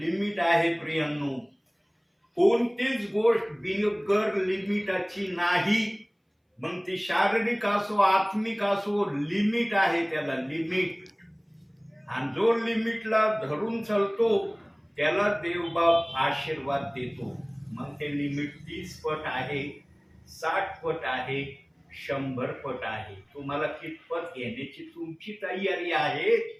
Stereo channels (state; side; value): identical; both; correlation 1.00